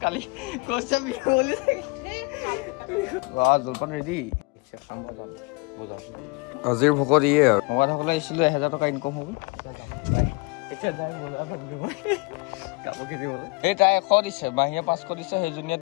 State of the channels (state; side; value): quieter; right; 27.3 dB